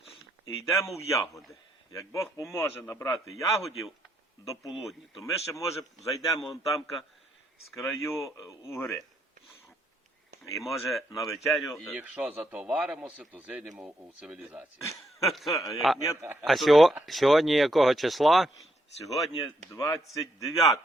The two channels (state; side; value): normal; both; correlation 0.76